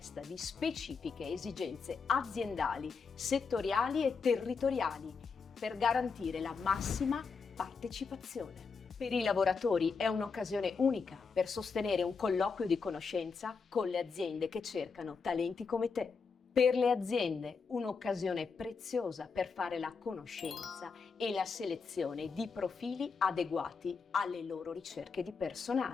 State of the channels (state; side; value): quieter; right; 5.1 dB